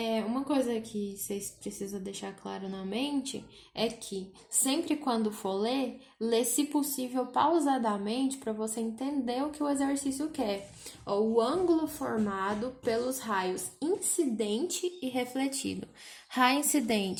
Uma coisa que vocês precisam deixar claro na mente é que sempre quando for ler, lê se possível pausadamente para você entender o que o exercício quer. O ângulo formado pelos raios incidente e refletido. Raio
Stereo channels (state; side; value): identical; both; correlation 1.00